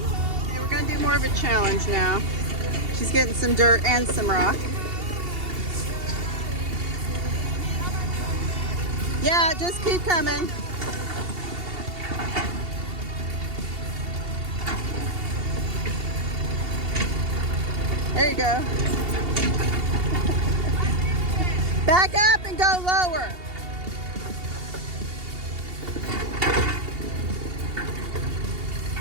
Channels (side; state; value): left; late; 2.8 ms